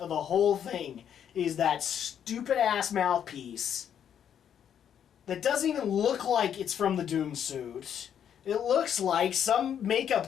the whole thing, is that stupid-ass mouthpiece that doesn't even look like it's from the Doom suit. It looks like some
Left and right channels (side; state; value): right; quieter; 9.0 dB